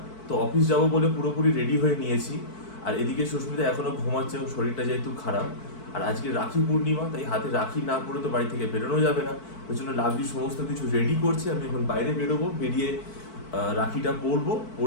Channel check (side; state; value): right; late; 4.5 ms